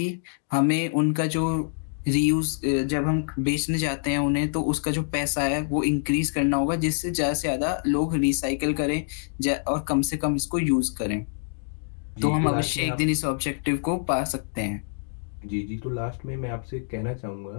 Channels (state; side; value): silent; right; digital silence